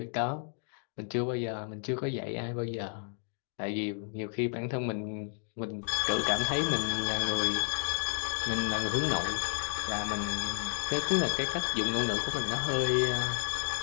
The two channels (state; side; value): silent; right; 56 dB below the other